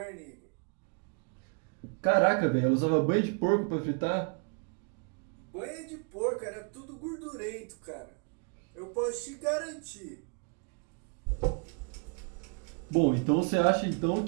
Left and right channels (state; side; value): quieter; left; 37.5 dB